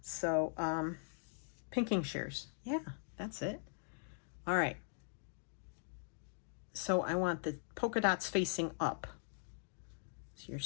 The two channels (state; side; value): silent; right; digital silence